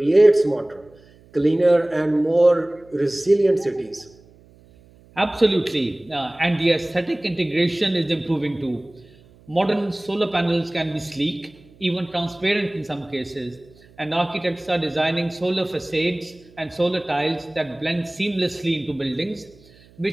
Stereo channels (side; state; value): right; noise; hum, 27 dB below the sound